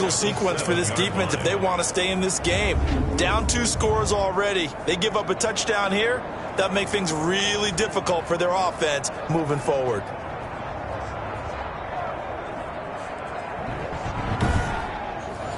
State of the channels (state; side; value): identical; both; correlation 1.00